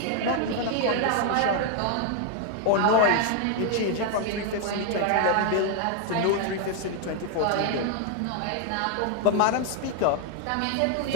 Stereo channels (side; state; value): both; different; correlation 0.00